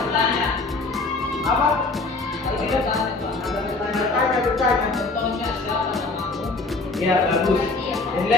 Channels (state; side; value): quieter; right; 3.5 dB